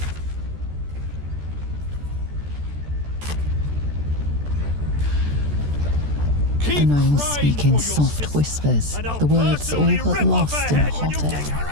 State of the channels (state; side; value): late; left; 14 ms